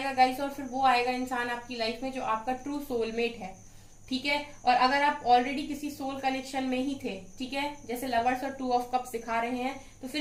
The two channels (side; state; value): both; identical; correlation 1.00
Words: गाइस, और फिर वो आएगा इंसान आपकी लाइफ में जो आपका ट्रू सोलमेट है। ठीक है, और अगर आप ऑलरेडी किसी सोल कनेक्शन में ही थे, ठीक है, जैसे लवर्स और 2 ऑफ कप्स दिखा रहे हैं, तो फिर